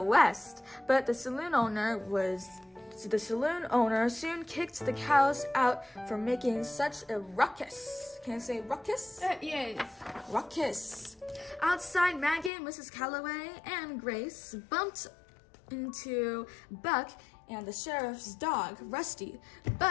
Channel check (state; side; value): drops out; right; at 12.5 s